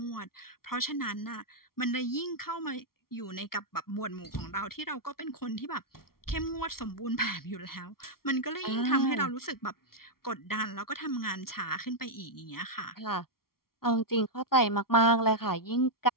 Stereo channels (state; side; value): late; right; 0.93 ms